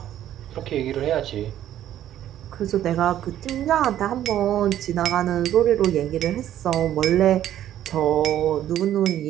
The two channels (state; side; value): quieter; left; 11.8 dB